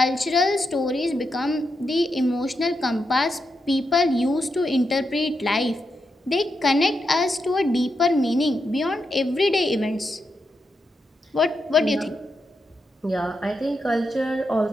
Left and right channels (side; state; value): both; normal; correlation 0.84